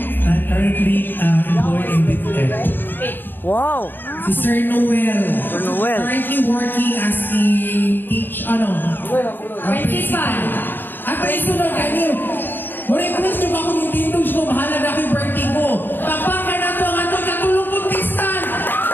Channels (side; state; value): right; late; 0.094 ms